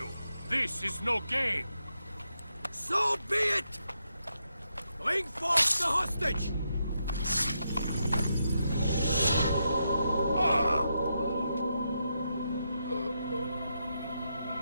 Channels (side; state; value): both; inverted; correlation -0.83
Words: this is no game. So be it! Bring forth the hostage!